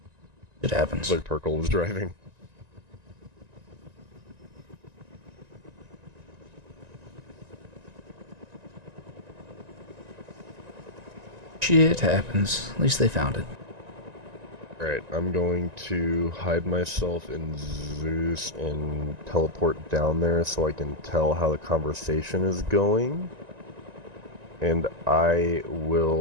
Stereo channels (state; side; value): late; left; 1.9 ms